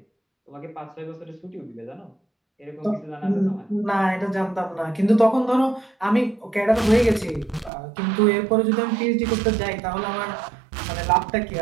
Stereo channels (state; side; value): drops out; left; at 7.7 s